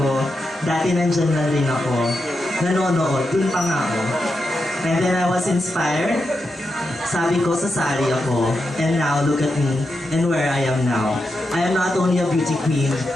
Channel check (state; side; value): normal; both; correlation 0.87